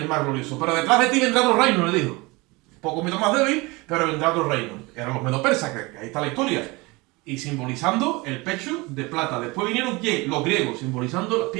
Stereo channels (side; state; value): left; quieter; 24.3 dB